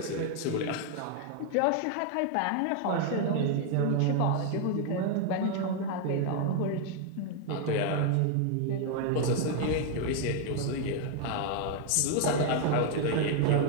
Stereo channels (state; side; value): different; both; correlation 0.00